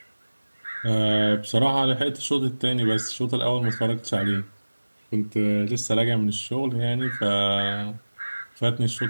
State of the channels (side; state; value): both; inverted; correlation -1.00